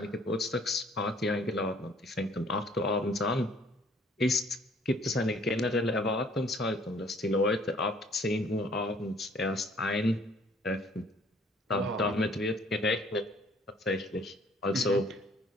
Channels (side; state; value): both; normal; correlation 0.58